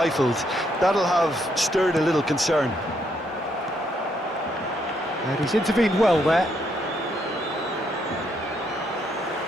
That'll have stirred a little concern. And he's intervened well there.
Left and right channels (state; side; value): normal; both; correlation 0.74